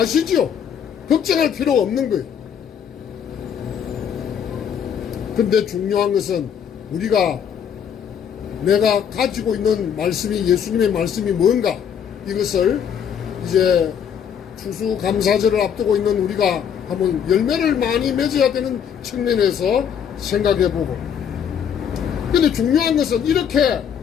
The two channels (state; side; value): quieter; right; 8.2 dB